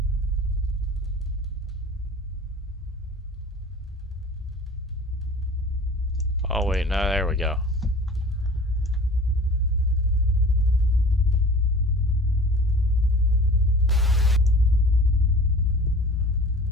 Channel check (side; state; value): both; normal; correlation 0.42